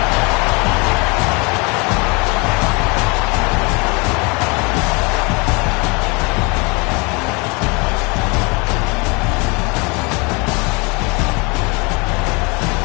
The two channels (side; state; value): right; quieter; 29.6 dB